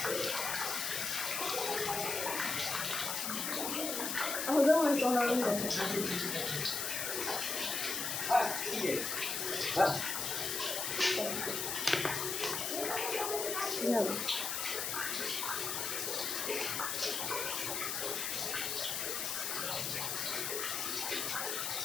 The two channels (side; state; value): left; noise; hiss, 1 dB below the sound